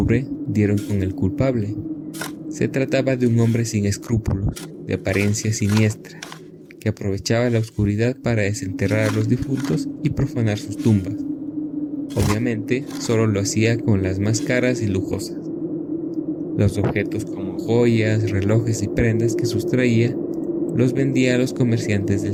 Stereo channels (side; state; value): both; identical; correlation 1.00